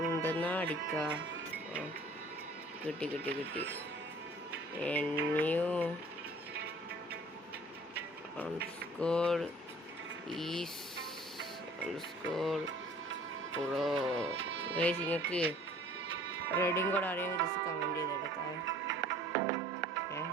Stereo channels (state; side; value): normal; both; correlation 0.51